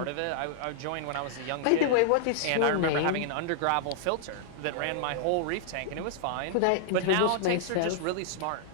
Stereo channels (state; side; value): different; both; correlation -0.01